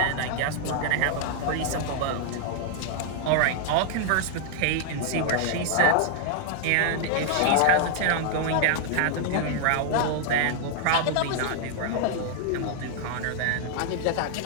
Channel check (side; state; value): both; different; correlation 0.00